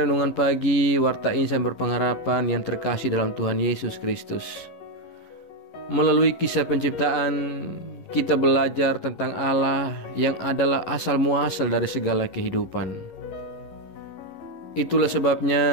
Renungan Pagi Warta Insan Berpengharapan yang terkasih dalam Tuhan Yesus Kristus. Melalui kisah penciptaan, kita belajar tentang Allah yang adalah asal muasal dari segala kehidupan. Itulah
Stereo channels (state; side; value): late; right; 11 ms